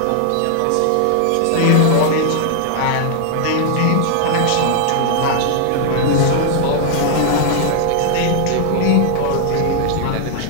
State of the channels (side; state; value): both; different; correlation 0.00